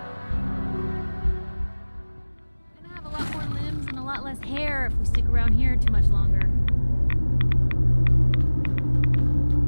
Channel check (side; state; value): both; inverted; correlation -1.00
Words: Gonna have a lot more limbs and a lot less hair if we stick around here too much longer.